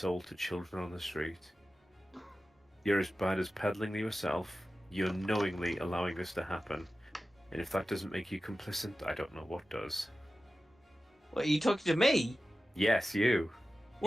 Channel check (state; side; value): normal; both; correlation 0.94